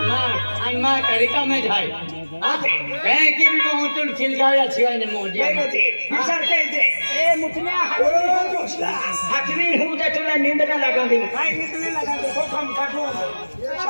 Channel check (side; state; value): both; inverted; correlation -1.00